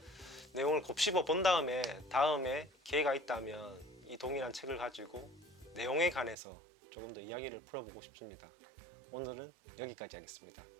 내용을 곱씹어 본 다음에 기회가 있다면 이 동일한 책을 가지고 내용에 관해서 조금 더 이야기를 풀어보고 싶습니다. 오늘은 여기까지 하겠습니다.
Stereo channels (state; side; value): drops out; left; at 6.4 s